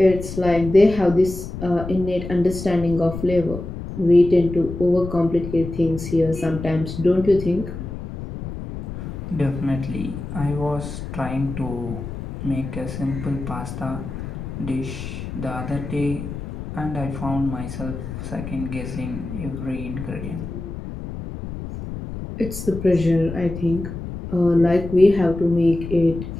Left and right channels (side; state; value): left; noise; rumble, 8 dB below the sound